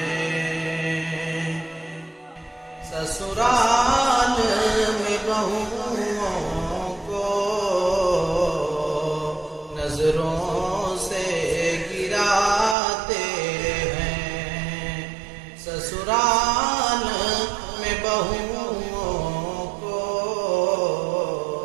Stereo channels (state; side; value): drops out; left; at 12.8 s